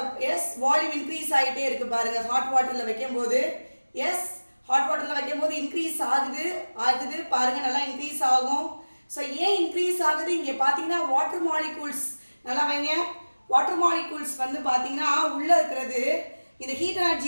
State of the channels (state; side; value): inverted; both; correlation -1.00